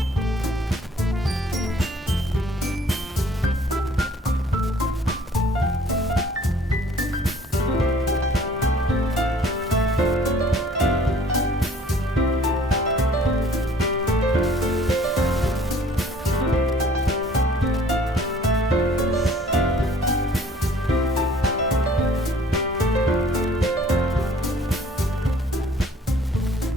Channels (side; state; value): both; normal; correlation 0.54